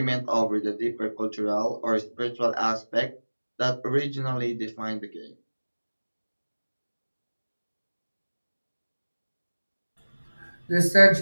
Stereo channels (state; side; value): inverted; both; correlation -1.00